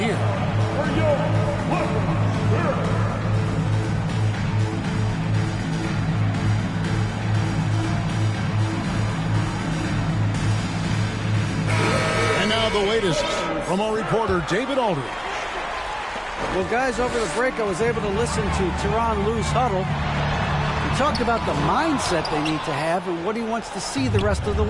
And now the latest from our reporter, David Aldridge. Well, guys, over the break, I was able to listen to Tyronn Lue's huddle. He talked about the mindset they need to have and what he wants to see the rest of the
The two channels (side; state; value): both; identical; correlation 1.00